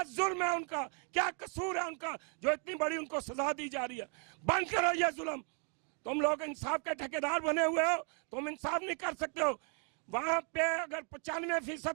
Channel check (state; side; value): quieter; left; 40.0 dB